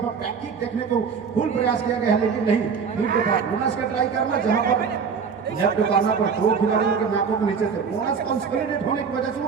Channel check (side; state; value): left; quieter; 6.0 dB